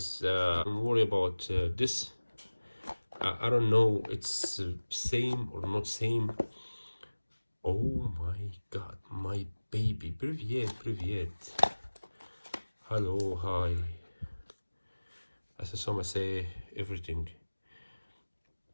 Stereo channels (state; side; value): inverted; both; correlation -1.00